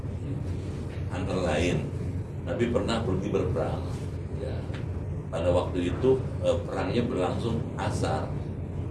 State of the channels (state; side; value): identical; both; correlation 1.00